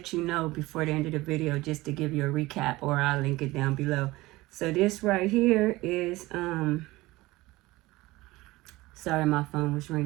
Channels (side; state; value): left; quieter; 19.7 dB